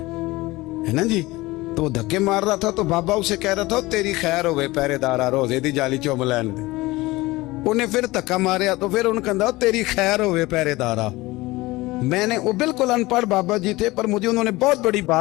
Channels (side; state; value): right; quieter; 20.4 dB